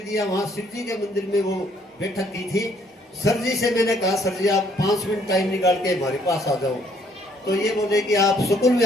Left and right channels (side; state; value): both; normal; correlation 0.65